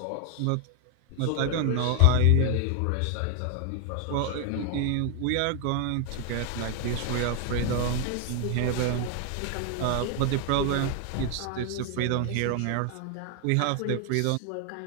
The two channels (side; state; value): both; different; correlation 0.00